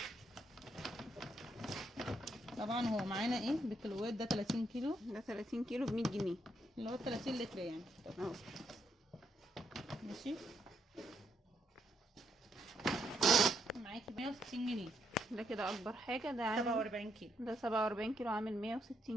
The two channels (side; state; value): both; normal; correlation 0.77